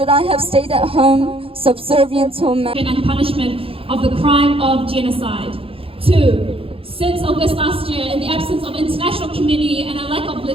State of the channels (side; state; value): left; late; 0.27 ms